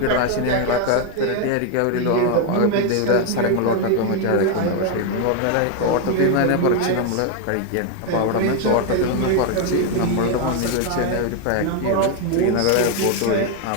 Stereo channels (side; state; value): both; different; correlation 0.01